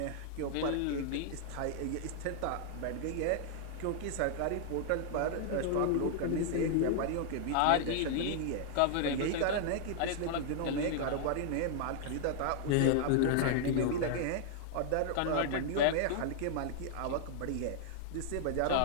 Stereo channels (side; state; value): both; different; correlation -0.01